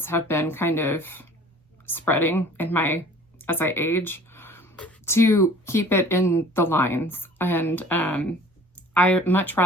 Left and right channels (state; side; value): normal; both; correlation 0.48